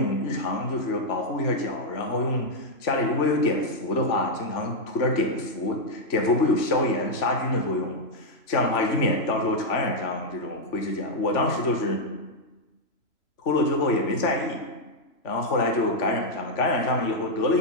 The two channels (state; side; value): late; right; 3.0 ms